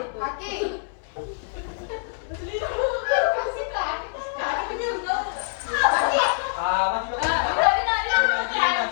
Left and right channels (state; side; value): silent; right; 62 dB below the other